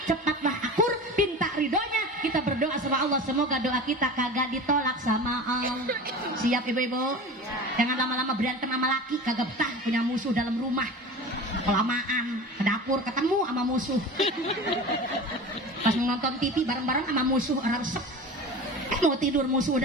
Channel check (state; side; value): normal; both; correlation 0.34